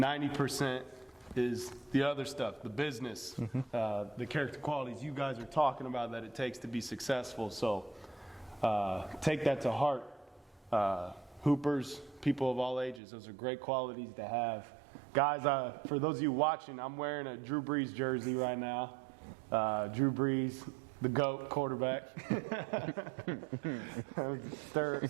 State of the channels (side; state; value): left; drops out; at 13.0 s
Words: is the other stuff, the business, the character qualities you guys are talking about that it takes to be successful. So take that to heart. Hoopers, people of all ages, those are great qualities to have. Guys, for those of you watching, I'm wearing a Drew Brees jersey right now. Drew Brees, the GOAT quarterback.